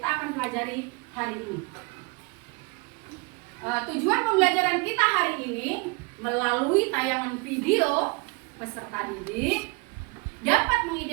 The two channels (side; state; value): left; quieter; 28.5 dB